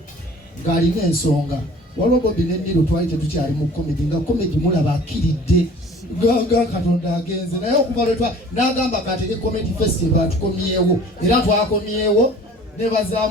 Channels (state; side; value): normal; both; correlation 0.48